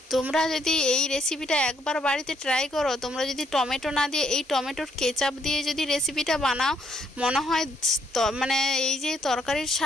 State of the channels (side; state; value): both; normal; correlation 0.71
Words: তোমরা যদি এই রেসিপিটা একবার বাড়িতে ট্রাই করো, তোমরা যদি টমেটো না দিয়ে এই টমেটোর কেচাপ দিয়ে যদি রেসিপিটা বানাও, মনে হয় এই যে তরকারির